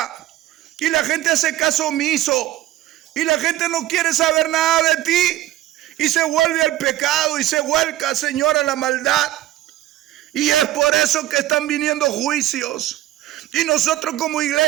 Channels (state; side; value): quieter; left; 14.6 dB